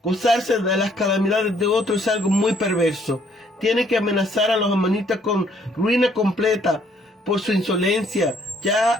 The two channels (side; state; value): both; normal; correlation 0.65